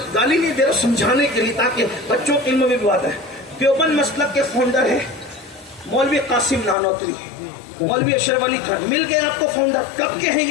گالی نہیں دے رہا، سمجھانے کے لیے تاکہ بچوں کے علم میں بھی بات ہے۔ دیوبند مسلک کے فاؤنڈر ہیں مولوی قاسم نانوتری، مولوی اشرف علی خان، مل گئے آپ کو فاؤنڈر۔ کب کے ہیں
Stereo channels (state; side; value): drops out; right; at 6.8 s